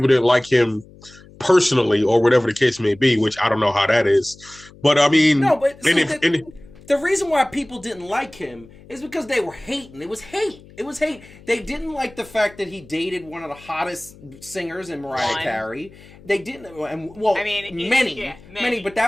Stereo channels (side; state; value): left; noise; hum, 22 dB below the sound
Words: didn't like him personally or whatever the case may be, which I don't know how that is. But I mean, no, but the reason why people didn't like him is because they were hating. It was hate. They didn't like the fact that he dated one of the hottest singers in Mariah Carey. They didn't, and well, I mean, many, but